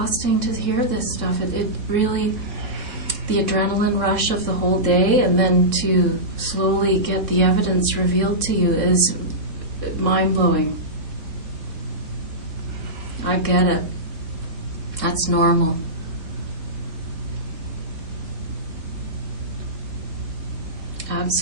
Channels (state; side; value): late; left; 3.7 ms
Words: to hear this stuff. It really, the adrenaline rush of the whole day and then to slowly get the evidence revealed to you is mind-blowing. I get it. That's normal.